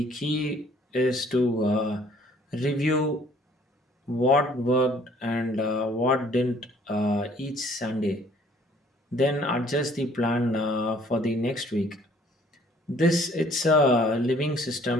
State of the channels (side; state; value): both; normal; correlation 0.58